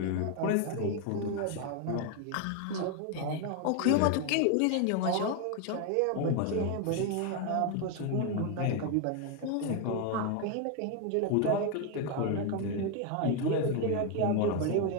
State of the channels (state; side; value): different; both; correlation 0.01